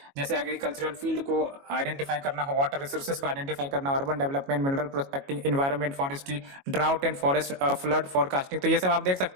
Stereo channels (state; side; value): late; left; 22 ms